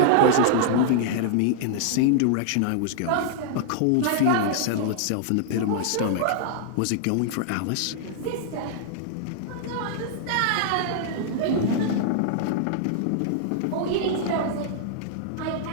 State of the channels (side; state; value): both; different; correlation -0.01